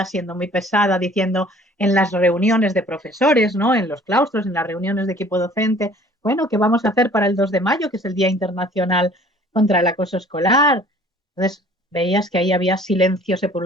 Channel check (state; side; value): normal; both; correlation 0.52